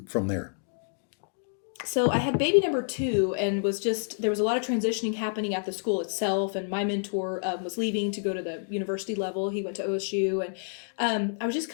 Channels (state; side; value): silent; right; digital silence